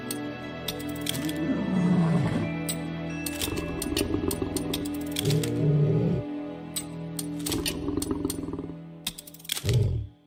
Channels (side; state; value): both; identical; correlation 1.00